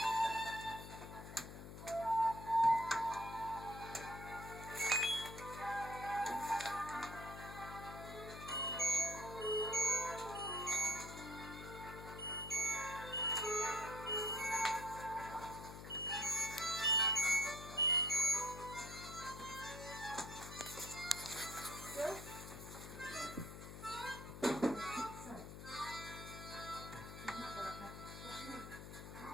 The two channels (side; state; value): left; noise; hum, 11 dB below the sound